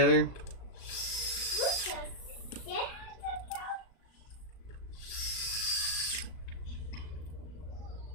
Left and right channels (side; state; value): right; late; 37 ms